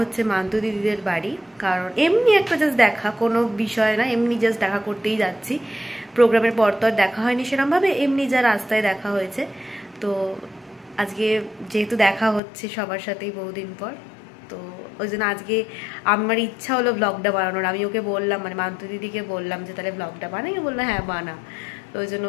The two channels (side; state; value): right; drops out; at 12.4 s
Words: মান্তু দিদিদের বাড়ি, কারণ এমনি একটা জাস্ট দেখা, কোনো বিষয় না, এমনি জাস্ট দেখা করতেই যাচ্ছি। প্রোগ্রামের পর তো আর দেখা হয়নি সেরকমভাবে, এমনি যা রাস্তায় দেখা হয়েছে। তো আজকে যেহেতু দেখা হচ্ছে সবার সাথেই বহুদিন পর, তো ওই জন্য আজকে আমার ইচ্ছা হলো ব্লগটা বানানোর। আমি ওকে বললাম, মানে মান্তু দিদিকে বললাম যে তাহলে ব্লগটা বানাই, বললো হ্যাঁ বানা। তো ওই জন্য